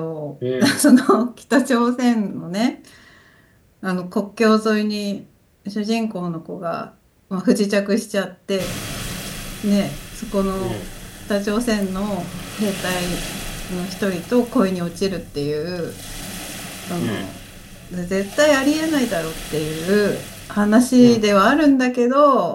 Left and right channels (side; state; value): both; identical; correlation 1.00